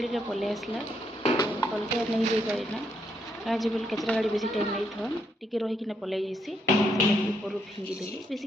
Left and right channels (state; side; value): normal; both; correlation 0.76